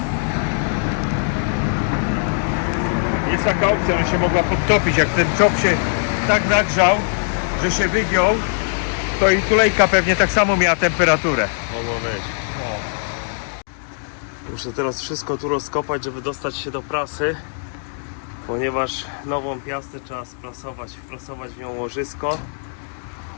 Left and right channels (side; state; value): right; silent; 65 dB below the other